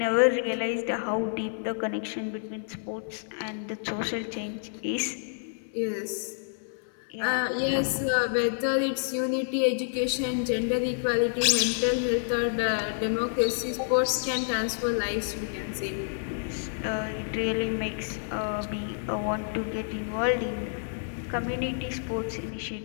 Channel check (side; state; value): right; silent; 56 dB below the other